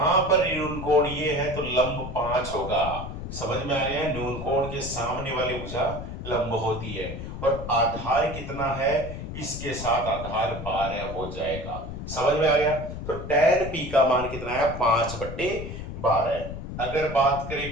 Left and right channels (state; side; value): noise; left; rumble, 8 dB below the sound